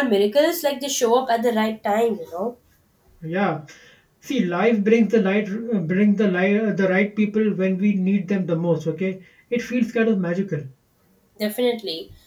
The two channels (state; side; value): identical; both; correlation 1.00